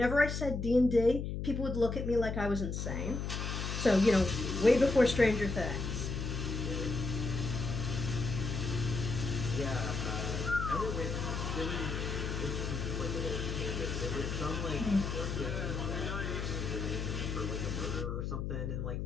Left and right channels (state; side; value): noise; left; hum, 3 dB below the sound